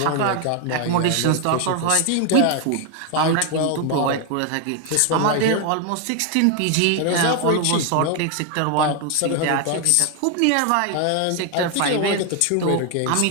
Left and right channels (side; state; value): both; different; correlation 0.01